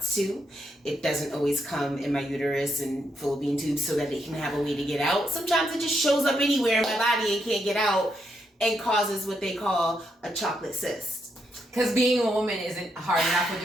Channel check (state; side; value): normal; both; correlation 0.79